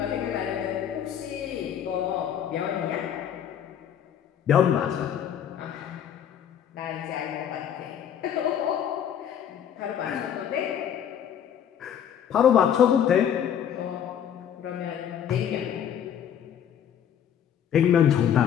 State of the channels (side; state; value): right; quieter; 9.2 dB